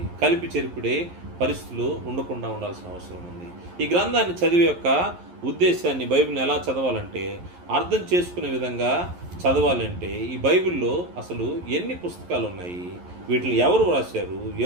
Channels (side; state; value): left; late; 11 ms